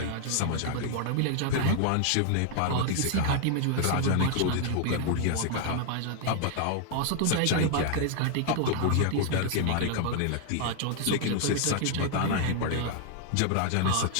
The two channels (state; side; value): different; both; correlation 0.00